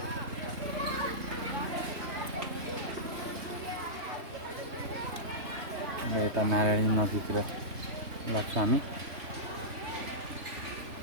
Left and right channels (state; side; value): late; left; 3.2 ms